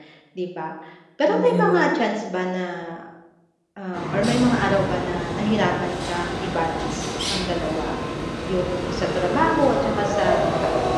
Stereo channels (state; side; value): identical; both; correlation 1.00